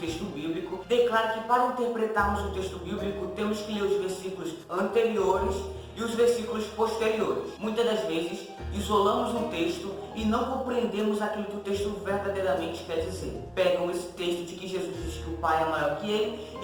bíblico, declara que para interpretarmos o texto bíblico temos que ler os versículos anteriores e os versículos posteriores. Muitas das vezes isolamos um texto e não compreendemos aquilo que o texto verdadeiramente quer dizer. Pegam esse texto de que Jesus diz que o Pai é maior que ele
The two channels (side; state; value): both; identical; correlation 1.00